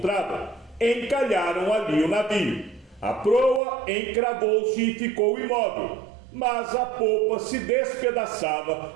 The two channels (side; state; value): left; drops out; at 3.6 s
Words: encalharam ali o navio. A proa encravou-se e ficou imóvel, mas a popa se despedaçava